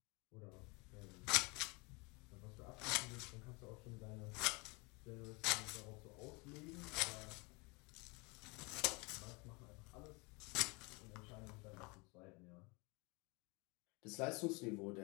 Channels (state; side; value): quieter; right; 28.2 dB